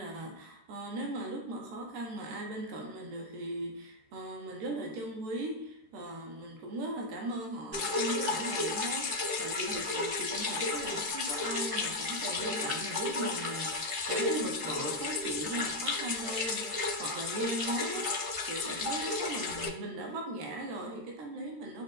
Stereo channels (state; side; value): late; left; 13 ms